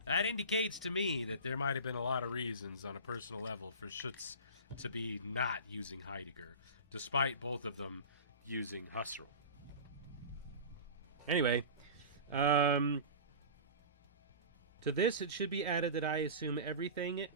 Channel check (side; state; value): both; inverted; correlation -0.33